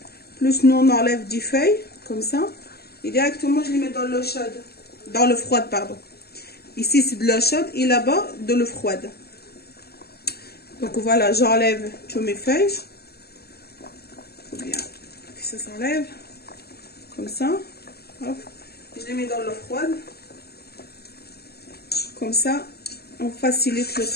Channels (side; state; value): right; late; 0.46 ms